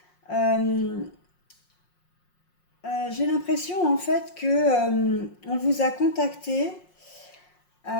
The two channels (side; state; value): right; late; 5.6 ms